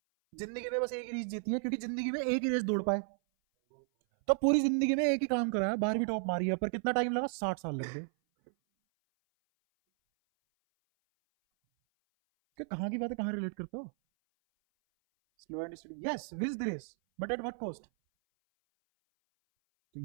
जिंदगी में बस एक ही रेस जीती है, क्योंकि जिंदगी में एक ही रेस दौड़ पाए। तो पूरी जिंदगी में एक ही काम करा है, 12वीं टॉप मारी है, पर कितना टाइम लगा? 60 साल लग गए। कि कहाँ की बात है, कहाँ रिलेट करते हो? Slow and steady, yes, wins the race, but at what cost? तो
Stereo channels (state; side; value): silent; left; 55 dB below the other